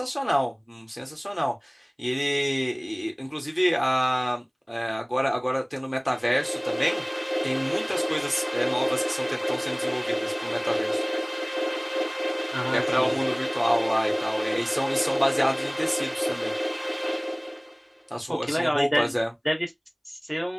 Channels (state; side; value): identical; both; correlation 1.00